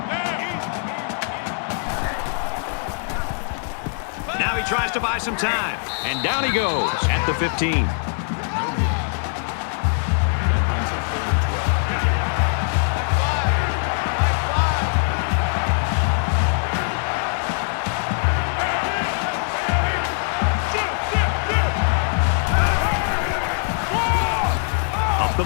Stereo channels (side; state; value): right; silent; 61 dB below the other